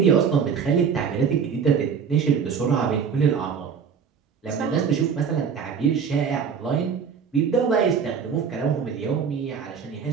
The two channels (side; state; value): left; quieter; 6.6 dB